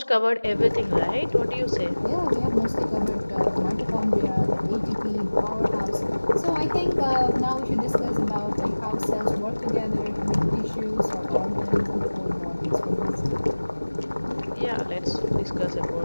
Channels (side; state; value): both; inverted; correlation -1.00